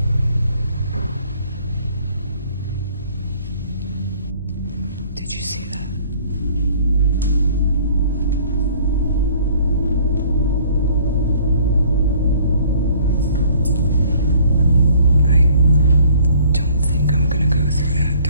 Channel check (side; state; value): both; inverted; correlation -0.56